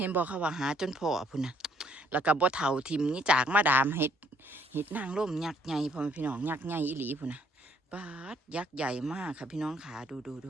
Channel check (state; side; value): normal; both; correlation 0.65